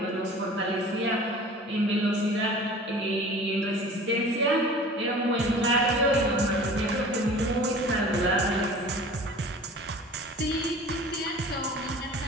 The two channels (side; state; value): both; normal; correlation 0.42